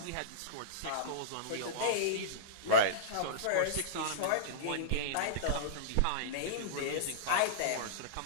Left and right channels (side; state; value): both; different; correlation -0.04